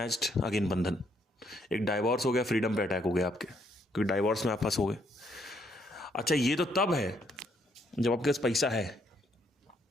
again, बंधन। एक डाइवोर्स हो गया, फ्रीडम पे अटैक हो गया आपके, क्योंकि डाइवोर्स में आप फंस हो गए। अच्छा, ये तो तब है जब आपके पास पैसा है।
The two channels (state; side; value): normal; both; correlation 0.71